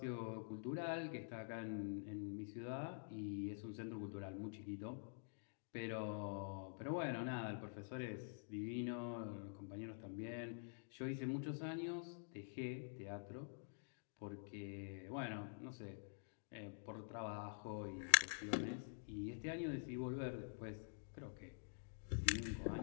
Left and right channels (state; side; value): silent; right; digital silence